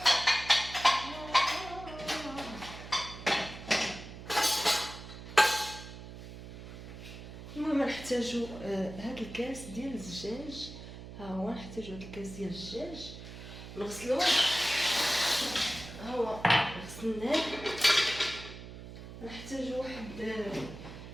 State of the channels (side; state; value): right; noise; hum, 13 dB below the sound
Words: المهم نحتاجو هاد الكاس ديال الزجاج. ها هو نحتاجو هاد الكاس ديال الزجاج نغسلوه. ها هو غسلناه. نحتاجو واحد